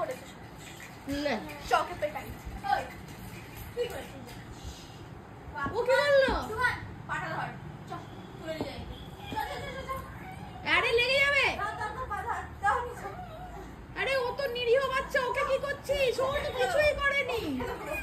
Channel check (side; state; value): both; identical; correlation 1.00